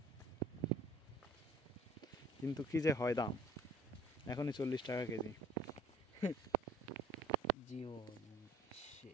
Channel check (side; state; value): both; normal; correlation 0.52